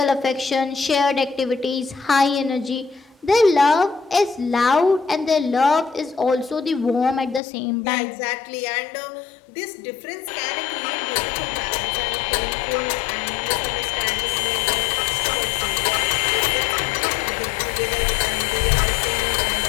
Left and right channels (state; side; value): drops out; right; at 7.4 s